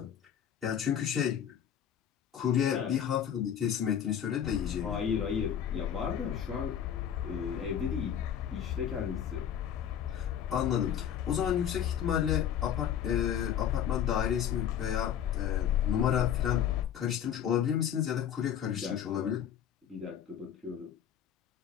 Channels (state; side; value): quieter; right; 9.3 dB